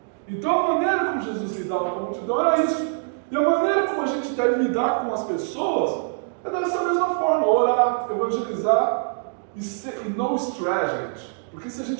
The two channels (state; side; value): silent; left; digital silence